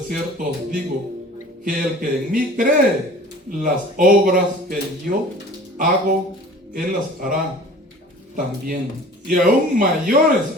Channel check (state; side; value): normal; both; correlation 0.44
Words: os digo, que el que en mí cree, las obras que yo hago, Él las hará también. Y aún mayores